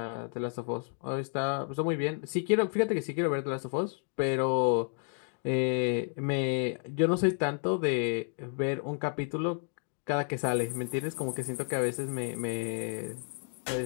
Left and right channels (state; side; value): silent; right; 57 dB below the other